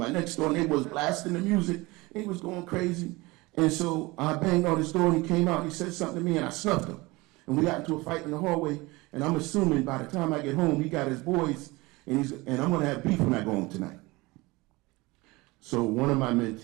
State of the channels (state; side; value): quieter; left; 22.5 dB